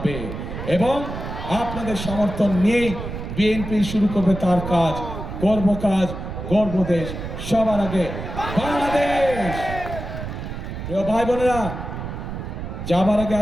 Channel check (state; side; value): noise; right; rumble, 7 dB below the sound